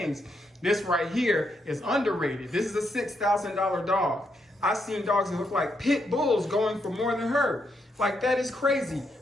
This right here is underrated. This is a $6,000 dog. I've seen dogs that look like pit bulls going for more than her. Like, that is crazy.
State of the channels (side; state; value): both; normal; correlation 0.79